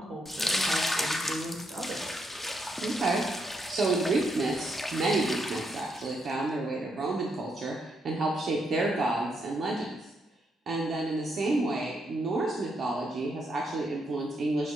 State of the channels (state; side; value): normal; both; correlation 0.78